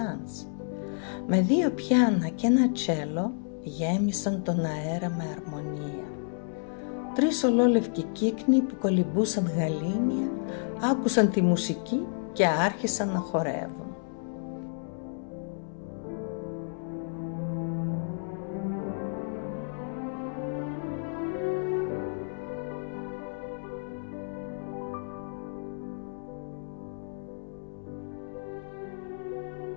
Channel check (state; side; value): silent; right; digital silence